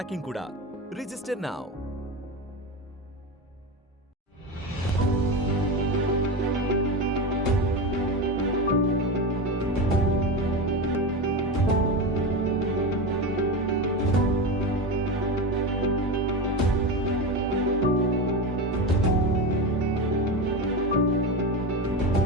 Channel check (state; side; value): normal; both; correlation 0.20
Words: కూడా. Register now.